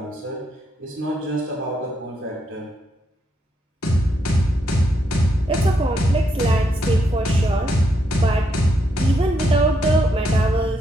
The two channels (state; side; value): normal; both; correlation 0.78